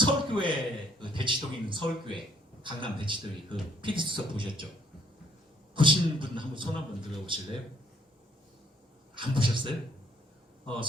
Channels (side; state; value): both; normal; correlation 0.66